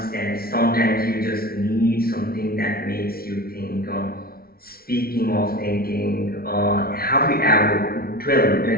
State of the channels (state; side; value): late; right; 0.44 ms